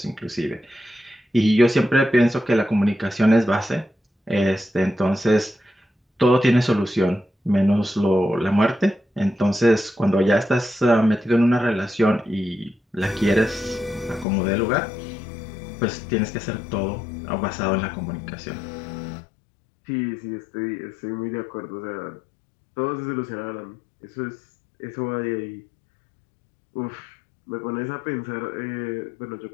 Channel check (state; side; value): drops out; right; at 14.2 s